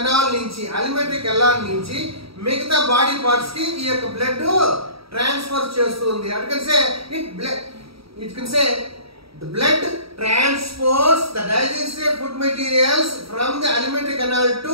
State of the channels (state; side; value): late; left; 0.76 ms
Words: నుంచి మిగతా బాడీ పార్ట్స్ కి ఈ యొక్క బ్లడ్ ట్రాన్స్ఫర్ చేస్తుంది. It can say the blood transports the digested food materials from the alimentary canal